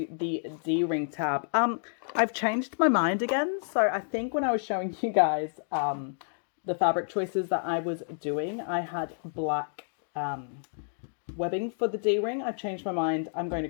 the D-ring tab. I've changed my mind again. So I think when I was showing you guys the fabric choices that I was doing, I had black webbing for the D-ring. I've changed my mind. I'm going to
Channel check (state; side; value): silent; right; digital silence